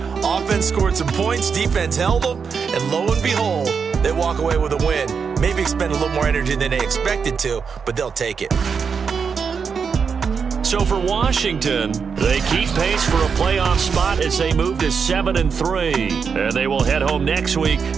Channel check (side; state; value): left; quieter; 6.0 dB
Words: Offense scored some points, defense held them, and lo and behold, they walk away with a win. Maybe expend a little more energy than they expected to, but they'll take it. So for Washington, they keep pace for a playoff spot as they move to 7-3. And they will head home next week